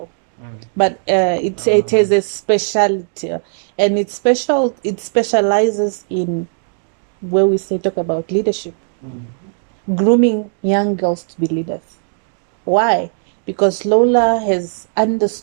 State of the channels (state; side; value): silent; left; digital silence